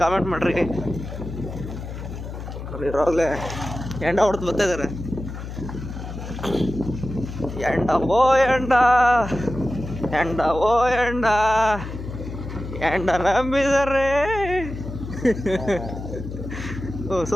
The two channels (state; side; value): noise; left; hum, 9 dB below the sound